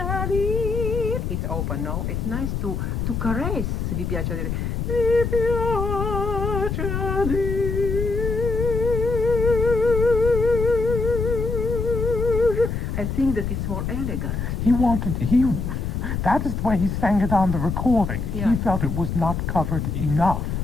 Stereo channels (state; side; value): noise; left; rumble, 2 dB below the sound